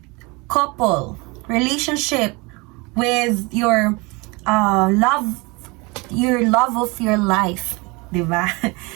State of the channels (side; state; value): left; quieter; 26.7 dB